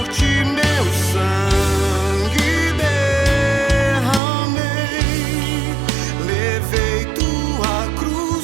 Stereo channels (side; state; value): left; drops out; at 4.2 s